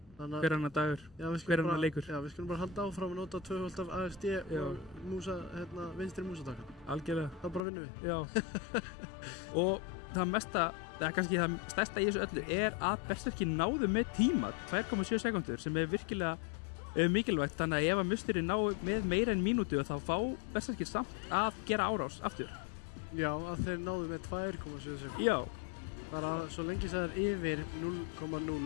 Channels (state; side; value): drops out; right; at 7.6 s